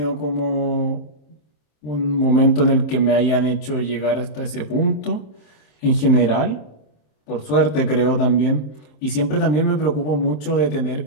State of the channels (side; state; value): right; late; 27 ms